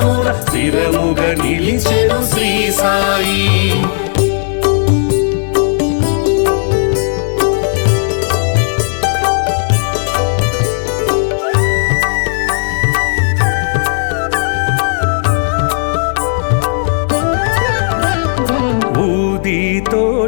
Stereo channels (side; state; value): right; silent; digital silence